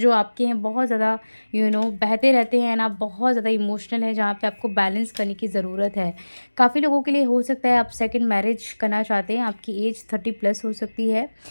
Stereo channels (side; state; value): both; inverted; correlation -1.00